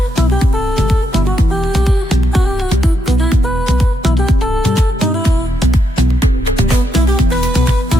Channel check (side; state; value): both; normal; correlation 0.80